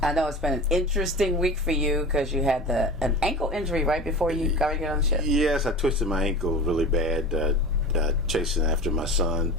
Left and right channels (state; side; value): normal; both; correlation 0.33